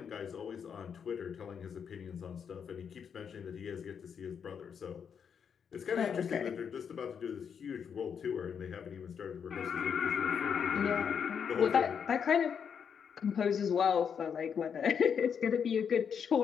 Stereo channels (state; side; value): quieter; right; 7.2 dB